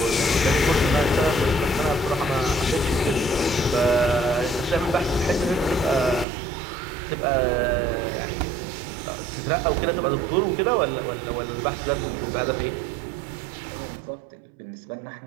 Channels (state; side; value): drops out; left; at 6.2 s